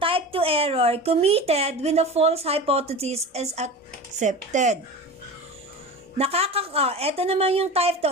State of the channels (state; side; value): normal; both; correlation 0.31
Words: type 2 error committed when the false hypothesis is accepted. Eto naman yung type